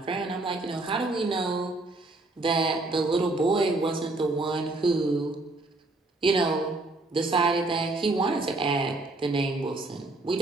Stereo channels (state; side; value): quieter; left; 3.0 dB